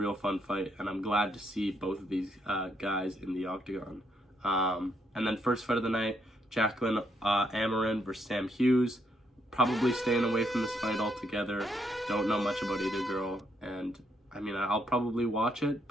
fun fight, and I'm glad to see both of these guys in the octagon. And then first fight of the night, Jacqueline Amarin versus Sam Hughes. Probably staying away from this fight altogether. Don't know much about either girl, and I mean, I'll probably watch it,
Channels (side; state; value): both; normal; correlation 0.75